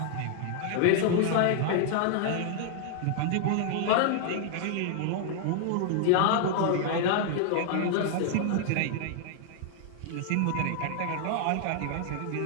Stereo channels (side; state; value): both; different; correlation 0.00